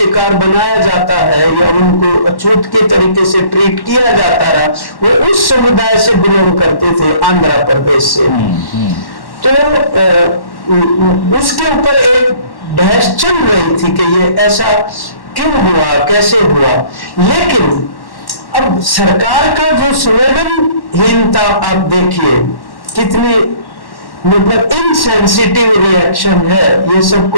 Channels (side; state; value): right; late; 1.1 ms